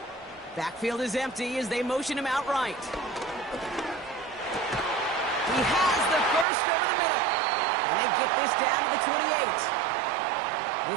Backfield is empty as they motion him out right. He has the first over the middle. And they get this down to the 28.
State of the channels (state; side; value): drops out; left; at 6.5 s